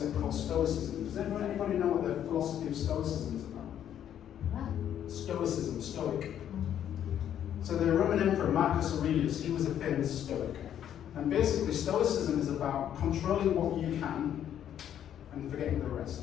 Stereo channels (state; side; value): quieter; right; 10.1 dB